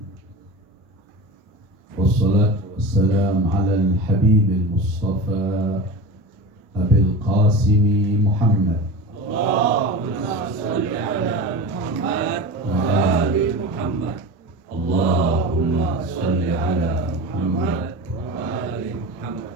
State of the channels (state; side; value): normal; both; correlation 0.30